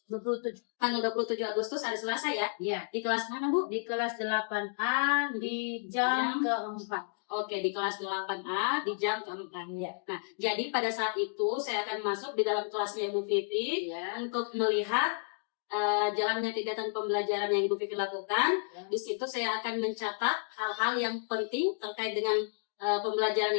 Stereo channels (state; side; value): silent; right; digital silence